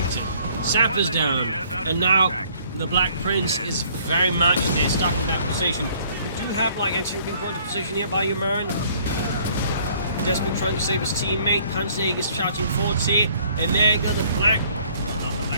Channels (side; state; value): both; inverted; correlation -0.59